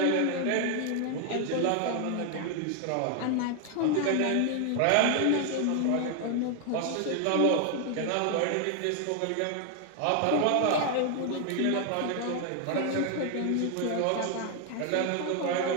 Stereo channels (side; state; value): both; different; correlation 0.00